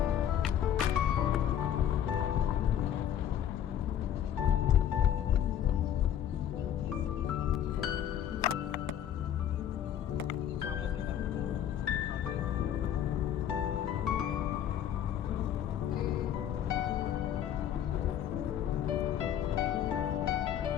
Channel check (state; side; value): quieter; right; 10.0 dB